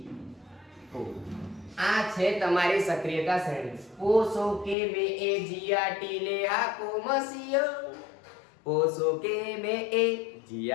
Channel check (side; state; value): right; drops out; at 4.8 s